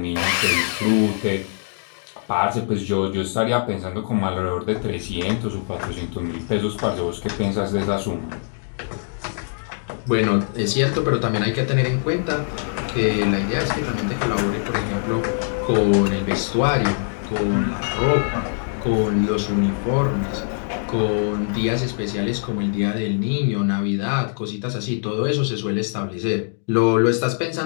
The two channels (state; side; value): silent; right; digital silence